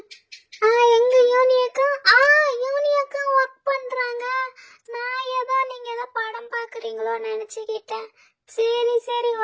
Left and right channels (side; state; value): both; identical; correlation 1.00